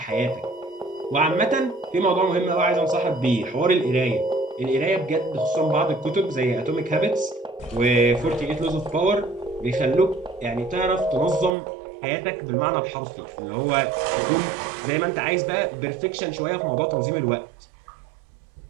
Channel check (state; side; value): drops out; left; at 11.5 s